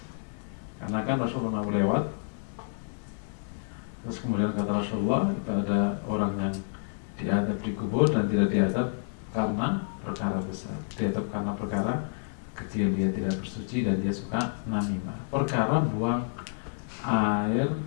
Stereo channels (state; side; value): silent; right; digital silence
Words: karena kan Rasulullah pernah lewat, terus kemudian kata Rasulullah, kita ada orang yang diadab di kubur dan tidak diadab karena perkara besar, diadab karena perkara kecil, dia tidak bersuci dan dia suka namimah, perkara buang air